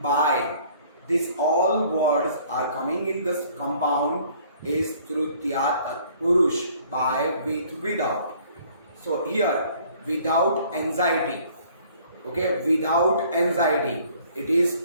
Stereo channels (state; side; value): inverted; both; correlation -0.57